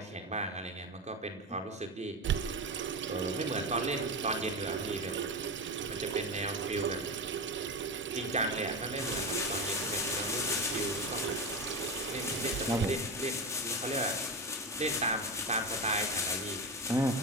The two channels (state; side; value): normal; both; correlation 0.20